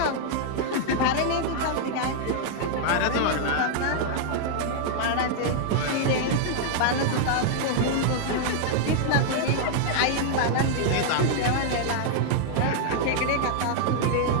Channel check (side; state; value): both; different; correlation -0.01